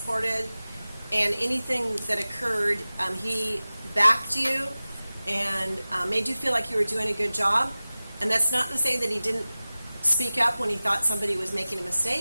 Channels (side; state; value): both; inverted; correlation -0.96